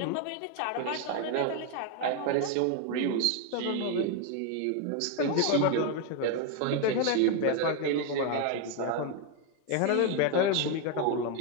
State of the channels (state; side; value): different; both; correlation 0.01